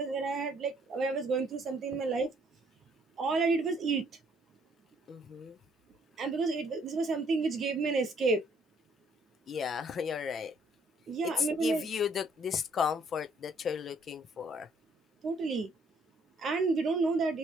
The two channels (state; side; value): normal; both; correlation 0.65